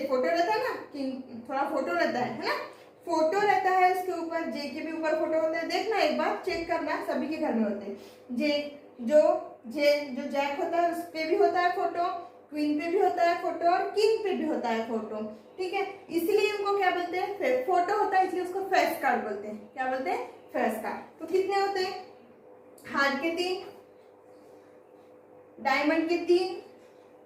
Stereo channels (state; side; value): identical; both; correlation 1.00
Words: फोटो रहता है ना, कि थोड़ा फोटो रहता है ना, फोटो रहता है उसके ऊपर। जे के भी ऊपर फोटो होता है, देखना एक बार, चेक करना, सभी के घर में होते हैं। जो जैक होता है उस पे भी होता है फोटो, क्वीन पे भी होता है फोटो और किंग पे भी होता है फोटो। ठीक है, इसलिए उनको क्या बोलते हैं? फोटो होता है, इसलिए उसको फेस कार्ड बोलते हैं। क्या बोलते हैं? Face card. तो कितने होते हैं? हार्ट के 3, डायमंड के 3,